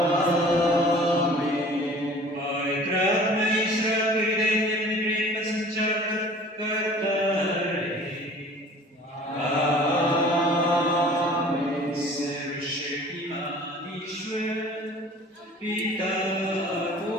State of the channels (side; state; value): both; normal; correlation 0.47